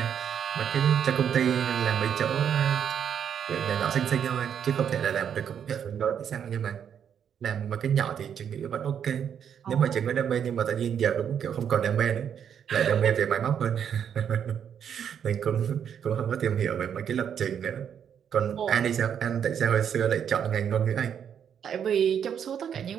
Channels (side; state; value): left; quieter; 8.3 dB